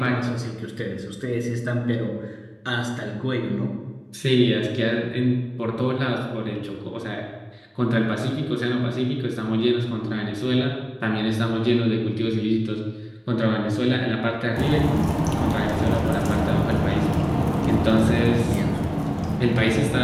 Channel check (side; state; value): both; identical; correlation 1.00